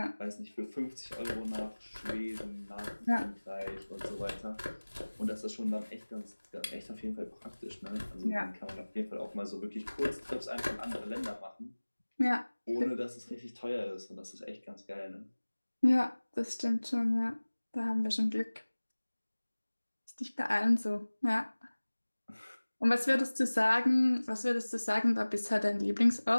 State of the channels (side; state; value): both; inverted; correlation -1.00